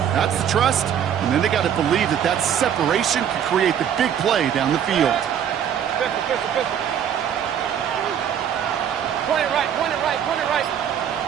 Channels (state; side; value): quieter; left; 9.0 dB